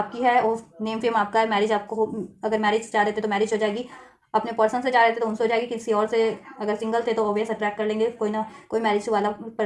है, और नेम फेम आपका है, मैरिज आपको अगर मैरिज चाह रहे थे तो मैरिज हो जाएगी, अपने पर्सन से चाह रहे थे तो उनसे हो जाएगी, किसी और से अगर सिंगल थे तो ऑब्वियस अट्रैक्ट कर लेंगे कोई ना कोई मैरिज वाला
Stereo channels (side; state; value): both; identical; correlation 1.00